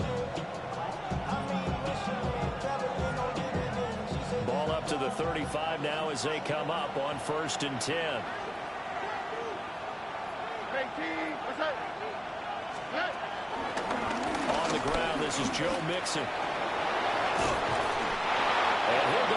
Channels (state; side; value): identical; both; correlation 1.00